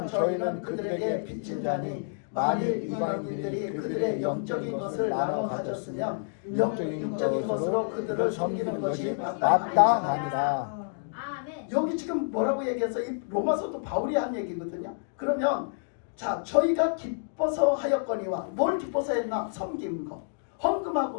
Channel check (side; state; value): right; silent; digital silence